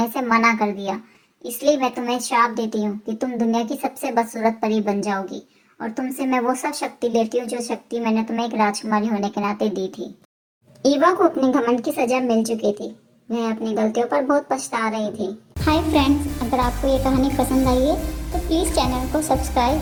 से मना कर दिया। इसलिए मैं तुम्हें श्राप देती हूँ कि तुम दुनिया की सबसे बदसूरत परी बन जाओगी और तुमसे मैं वो सब शक्ति लेती हूँ जो शक्ति मैंने तुम्हें एक राजकुमारी होने के नाते दी थी। ईवा को अपने घमंड की सजा मिल चुकी थी। वह अपनी गलतियों पर बहुत पछता रही थी। हाय फ्रेंड्स, अगर आपको ये कहानी पसंद आई है तो प्लीज़ चैनल को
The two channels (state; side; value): identical; both; correlation 1.00